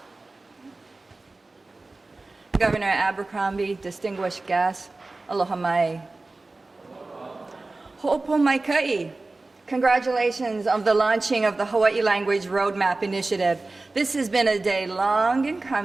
Governor Abercrombie, distinguished guests, aloha mai. Ho'opo mai kai. Congratulations on the launching of the Hawaii Language Roadmap Initiative. This has been a day long in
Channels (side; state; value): left; quieter; 3.3 dB